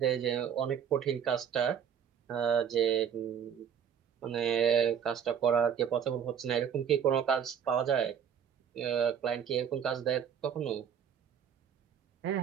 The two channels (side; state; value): left; quieter; 8.2 dB